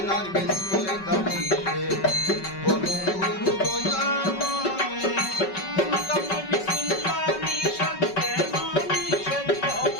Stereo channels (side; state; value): right; late; 5.3 ms